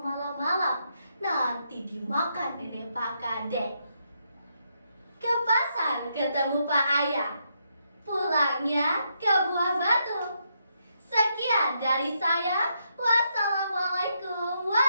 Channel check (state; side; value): inverted; both; correlation -0.79